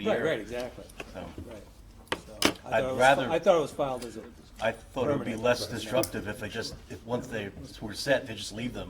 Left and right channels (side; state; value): both; identical; correlation 1.00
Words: Right, exactly, So, right. So, I'd I thought it was filed as a, I thought it would be Permanent. less disruptive if once they were set, they just leave